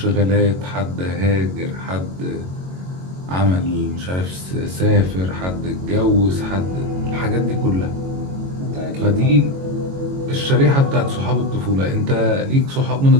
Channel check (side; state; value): left; late; 22 ms